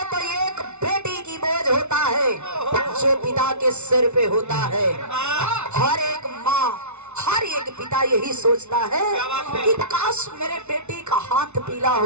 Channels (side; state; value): left; late; 0.82 ms